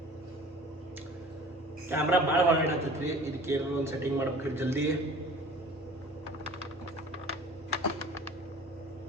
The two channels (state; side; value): normal; both; correlation 0.45